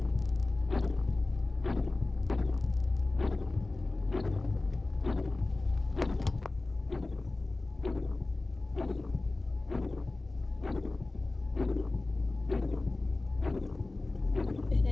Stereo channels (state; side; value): quieter; right; 3.2 dB